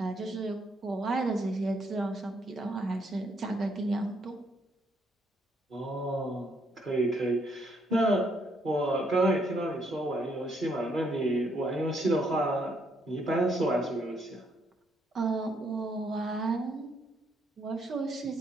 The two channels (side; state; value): both; normal; correlation 0.72